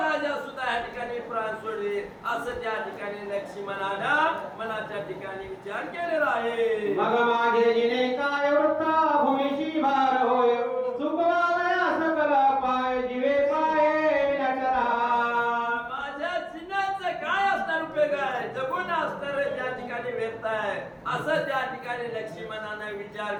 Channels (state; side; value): identical; both; correlation 1.00